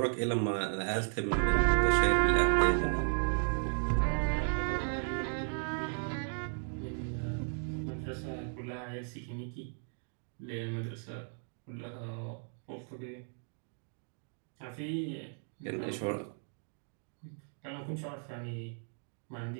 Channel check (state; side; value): silent; left; 54 dB below the other